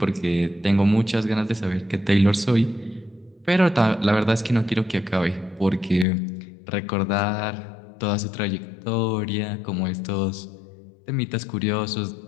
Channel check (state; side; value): drops out; right; at 6.1 s